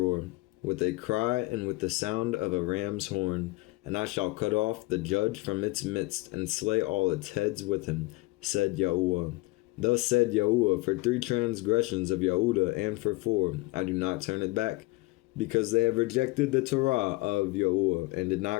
with a cry and with the sound of a ram's horn. And I shall cut off the judge from its midst, and slay all its heads with him, said Yahuwah. Thus said Yahuwah, for 3 transgressions of Yehudah, and for 4, I do not turn it back, because they have rejected the Torah of Yahuwah, and did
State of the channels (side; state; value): right; quieter; 22.5 dB